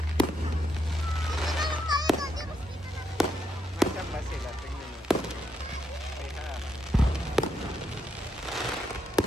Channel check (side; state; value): both; normal; correlation 0.79